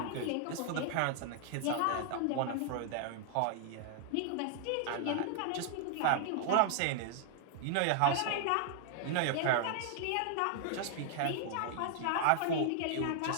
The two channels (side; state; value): both; different; correlation 0.00